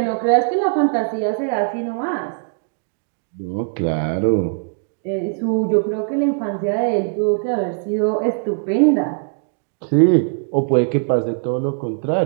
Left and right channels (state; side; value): silent; left; digital silence